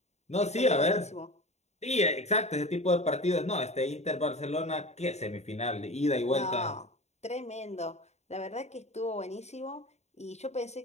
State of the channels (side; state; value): right; late; 0.32 ms